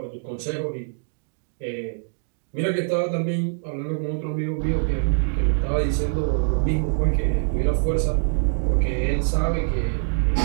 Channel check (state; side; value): silent; left; digital silence